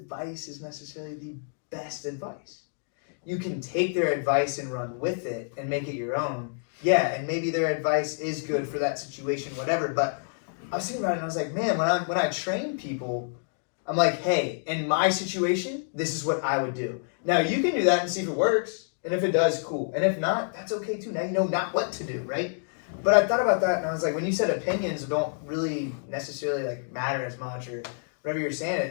is necessarily the best advice. You can take their advice and run with it and make it your own. Yeah, and maybe their advice is good for that situation, whatever. But I was thinking about it and I was like, man, when I train people, I'm like, hey, in my situation, this is what I would do. Now you can do that and see if it works. And if it does, cool. And if not, that's okay too. Now you know not what to do, right? But I thought about that and I was like, when you said opinions don't really necessarily like matter as much or whatever you're saying,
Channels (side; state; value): right; silent; digital silence